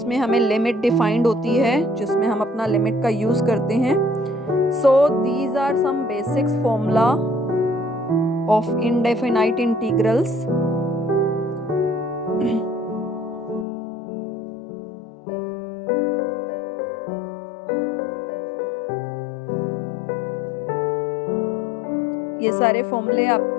हमें limit defined होती है, जिसमें हम अपना limit का use करते हैं. So these are some basics formula of indefinite integrals. ये सारे फॉर्मूले आप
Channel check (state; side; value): drops out; right; at 13.7 s